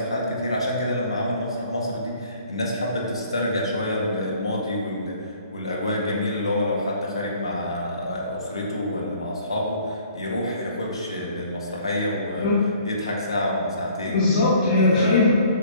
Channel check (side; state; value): both; inverted; correlation -0.56